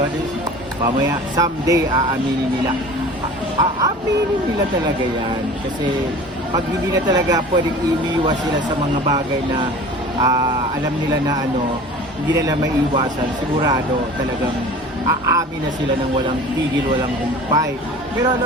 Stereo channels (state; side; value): normal; both; correlation 0.41